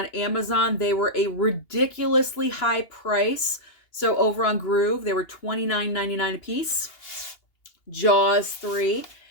Amazon they were a ridiculously high price. So over on Groove they were $29.99 a piece. Jaws 3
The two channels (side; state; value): right; late; 2.8 ms